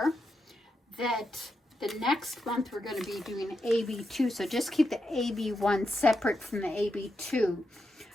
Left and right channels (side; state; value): both; normal; correlation 0.85